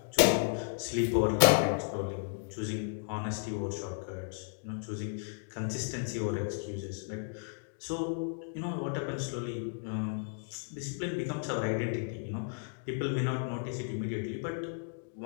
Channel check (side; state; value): right; silent; digital silence